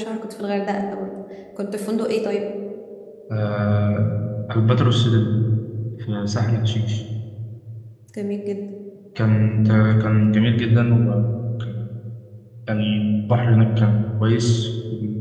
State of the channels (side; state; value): both; identical; correlation 1.00